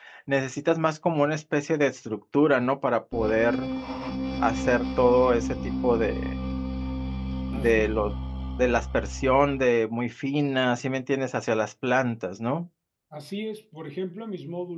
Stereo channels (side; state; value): both; identical; correlation 1.00